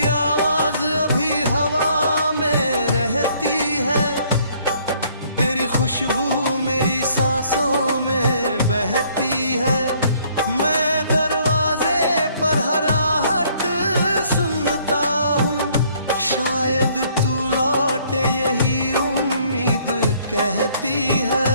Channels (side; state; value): both; inverted; correlation -0.63